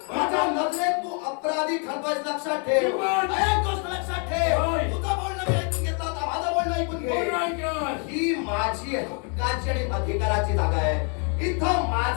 माझ्या नजरेत तू अपराधी ठरतोयस, लक्षात ठेव. एक गोष्ट लक्षात ठेव, होय. तुझं बोलणं मी ऐकून घेतलं, आता माझं बोलणं ऐकून घे. कोण ऐकणार? ही माझी हक्काची आणि अधिकाराची जागा आहे. इथं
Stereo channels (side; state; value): right; quieter; 39.0 dB